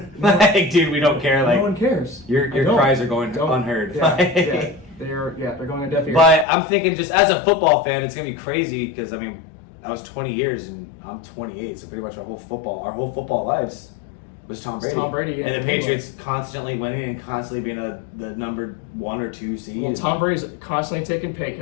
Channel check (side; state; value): right; drops out; at 6.5 s